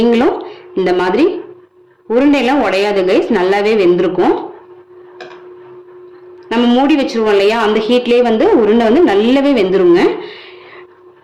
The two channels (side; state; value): both; identical; correlation 1.00